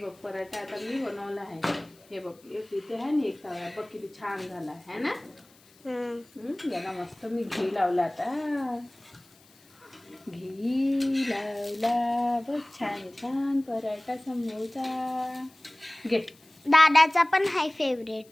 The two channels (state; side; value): noise; left; hiss, 28 dB below the sound